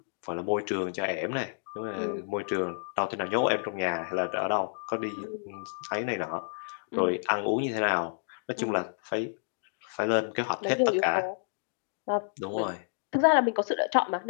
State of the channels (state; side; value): silent; right; digital silence